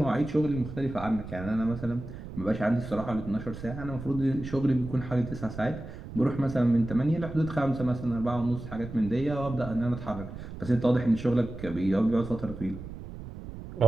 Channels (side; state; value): right; noise; rumble, 11 dB below the sound